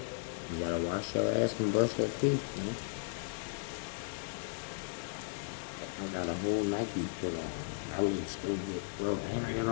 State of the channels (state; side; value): silent; right; digital silence